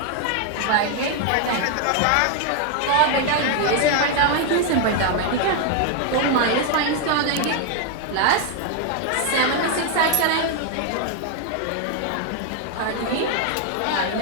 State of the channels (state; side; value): different; both; correlation 0.00